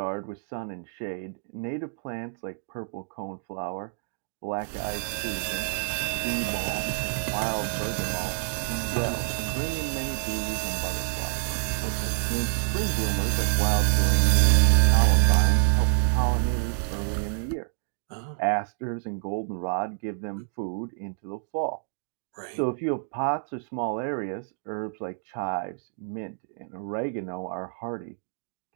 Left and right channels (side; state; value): left; silent; digital silence